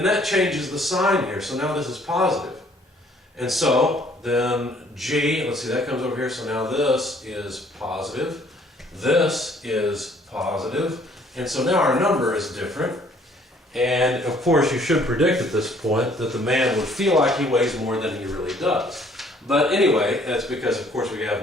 that changes the sign here. So now this is positive. And so then G, let's see, that comes over here. So now this is positive. This is positive. And so now our number is different. And of course you should predict at this point that the man would feel like he weighs more than he really does. But anyway, that's because of course we have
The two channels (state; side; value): normal; both; correlation 0.60